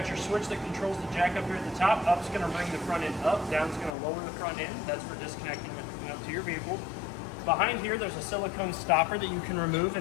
your switch that controls the jack up here at the top. Up's going to bring the front end up, down's going to lower the front end. That's for disconnecting and hooking up to your vehicle. Behind here, there's a silicone stopper that you can remove,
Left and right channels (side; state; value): right; drops out; at 4.0 s